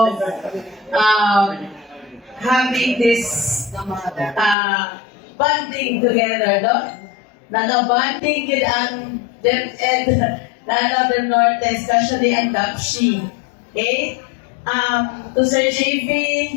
having this bonding together, no? Nagabonding yun ang DepEd na Northern Norte, especially ang DAPSHI. Okay? To Sir JV,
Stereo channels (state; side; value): drops out; right; at 4.5 s